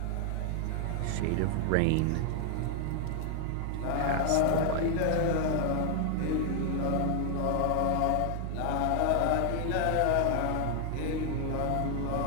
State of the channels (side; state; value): both; different; correlation 0.00